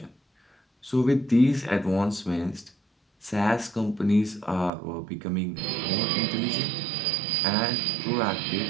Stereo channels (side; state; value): left; drops out; at 4.7 s